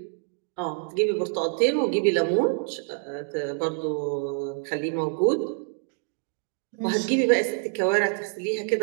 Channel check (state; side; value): silent; left; 61 dB below the other